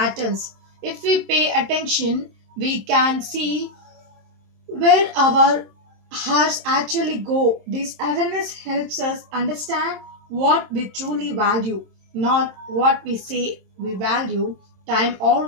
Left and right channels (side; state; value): left; late; 27 ms